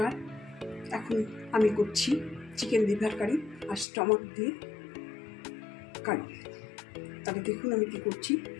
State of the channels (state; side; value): drops out; right; at 3.9 s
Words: এখন আমি করছি চিকেন লিভার কারি আর স্টমাক দিয়ে কারি। তাহলে দেখুন আমি কি করছি।